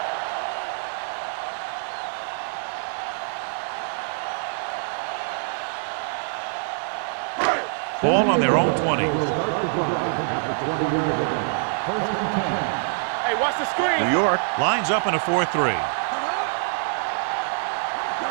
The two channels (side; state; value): left; silent; digital silence